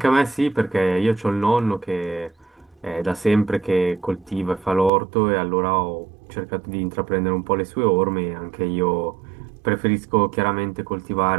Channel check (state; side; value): drops out; left; at 4.9 s